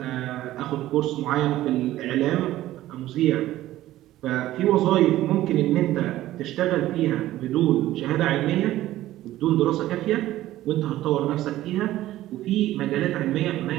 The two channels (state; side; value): quieter; left; 14.9 dB